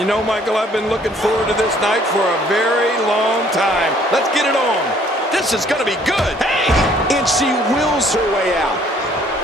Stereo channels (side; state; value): both; normal; correlation 0.60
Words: know, Michael, I've been looking forward to this night for a very long time. Let's get it on. This is going to be good. Hey! And she wills her way out.